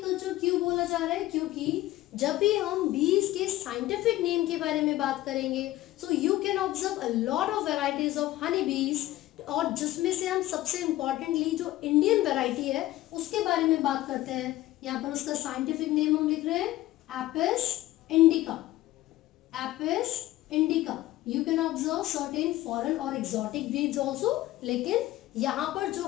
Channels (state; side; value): quieter; right; 16.0 dB